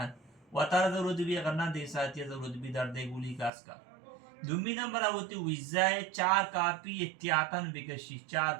وطار ضرورت بھی اگر نہ دے ساتھی ضرورت بھی درد گولی خاص کر. دومی نمبر ہوتی ویزائے 4 کاپی احتیاطاً بکشی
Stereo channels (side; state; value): left; drops out; at 3.5 s